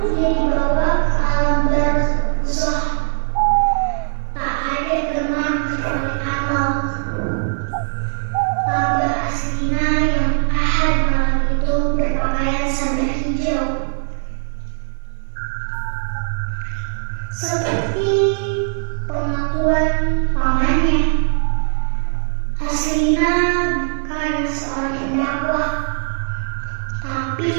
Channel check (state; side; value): silent; left; 56 dB below the other